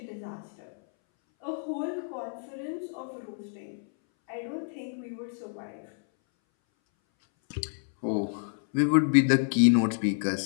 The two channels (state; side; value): silent; right; 59 dB below the other